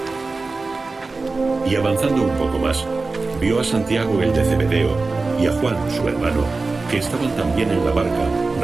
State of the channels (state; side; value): quieter; left; 3.8 dB